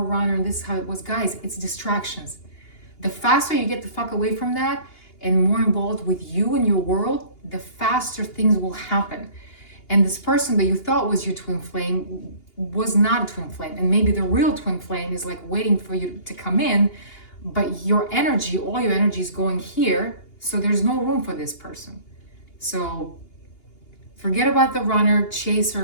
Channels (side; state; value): right; late; 2.8 ms